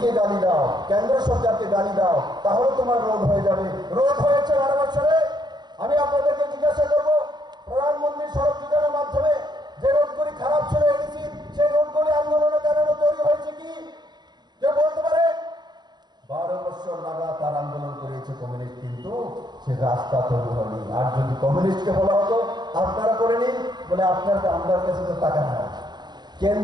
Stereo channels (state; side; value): late; left; 0.21 ms